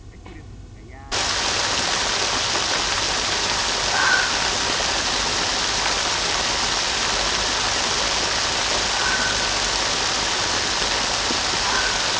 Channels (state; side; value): identical; both; correlation 1.00